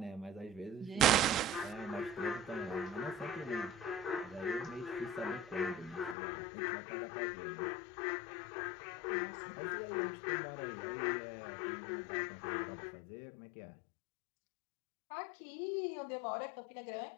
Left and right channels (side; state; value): right; drops out; at 6.2 s